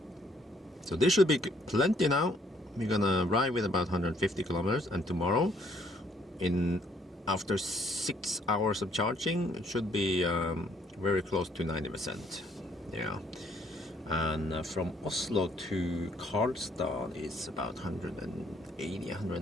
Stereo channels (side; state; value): both; normal; correlation 0.66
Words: So this should be plenty now. We're gonna ride with about 150 kilometers, and tomorrow, after 6 hours of charging, it should be very close to 90%. Yeah. And from Oslo to Karlstad is about 180,